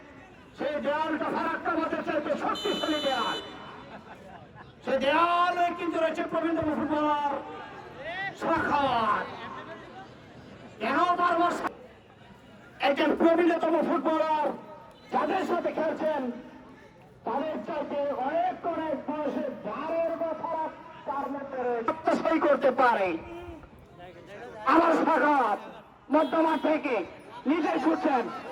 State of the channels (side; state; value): both; identical; correlation 1.00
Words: সেই দেয়ালটা ফারাক্কা মাঠের চাইতে শক্তিশালী দেয়াল। সেই দেয়ালে কিন্তু রয়েছে প্রবীণতম ফুটবলার শাখাওয়াত। কেন বারবার একজন প্রবীণতম ফুটবলার যাদের সাথে খেলছেন তাদের চাইতে অনেক অনেক বয়সে দ্বারের কথা তার মধ্যে সই করতে পারে। আমার শাখাওয়াত মধ্যমাঠ থেকে নিজে ছুটছেন।